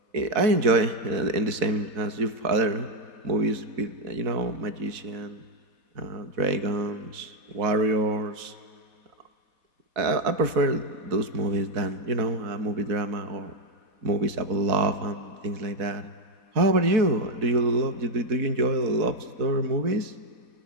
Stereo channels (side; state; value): left; late; 4.1 ms